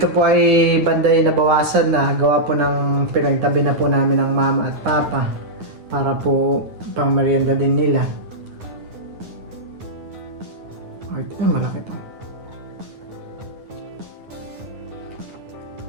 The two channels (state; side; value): late; left; 9.6 ms